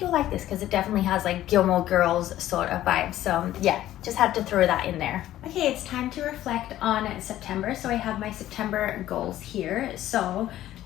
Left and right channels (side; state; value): right; quieter; 13.6 dB